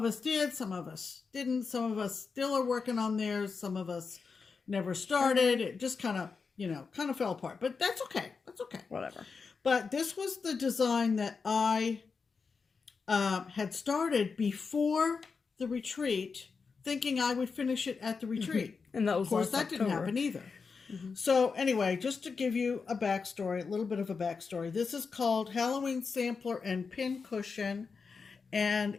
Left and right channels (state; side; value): quieter; right; 5.1 dB